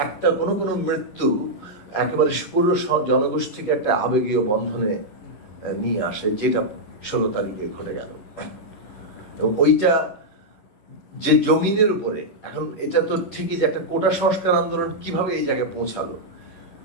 একটা কোনো মৃত্যু একেবারে পুরো জনগোষ্ঠীকে একটা আবেগীয় বন্ধনে নিয়ে আসে, যেটা 16 তারিখে ঘটে গেল। ওইটা যে জমিনের উপরে, এখন এটা তো ঠিকই যে একটা কোটা সংস্কার আন্দোলন কিভাবে এই জায়গায় পৌঁছালো,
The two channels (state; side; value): late; right; 10 ms